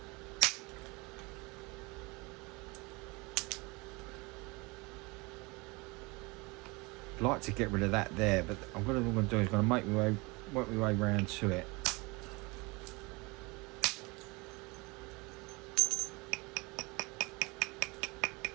I'd like to get rid of that there, but what I'm going to do is going to work my way round to it.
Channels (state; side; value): quieter; left; 26.1 dB